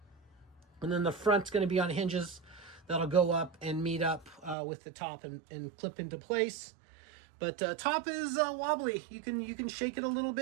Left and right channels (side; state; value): left; drops out; at 4.5 s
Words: And then the front's going to be on hinges that'll go up and meet up with the top and clip into place. But top is wobbly. You can shake it a little